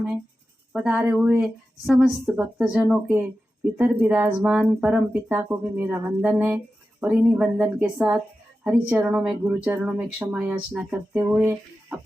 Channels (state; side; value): normal; both; correlation 0.93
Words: है। पधारे हुए समस्त भक्तजनों के भीतर विराजमान परम पिता को भी मेरा वंदन है। और इन्हीं वंदन के साथ हरि चरणों में, गुरु चरणों में क्षमा याचना करते हुए